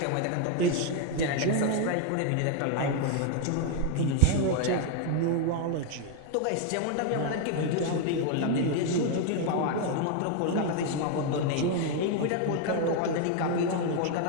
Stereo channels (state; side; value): different; both; correlation 0.01